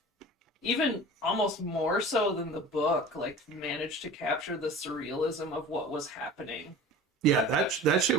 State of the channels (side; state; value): both; normal; correlation 0.40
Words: even almost more so than the book, like managed to capture the surrealism of what was happening. Yeah, that shit